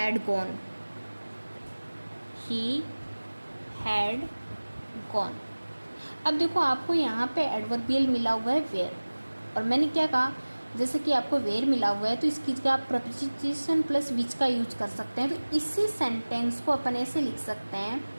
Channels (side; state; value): both; inverted; correlation -1.00